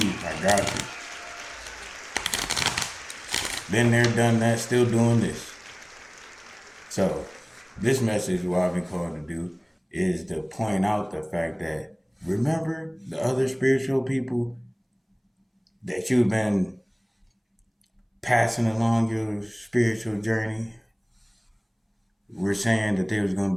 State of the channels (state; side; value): identical; both; correlation 1.00